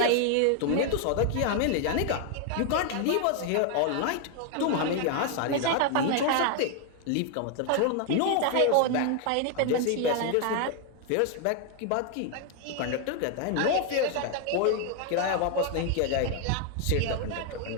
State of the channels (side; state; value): both; different; correlation 0.00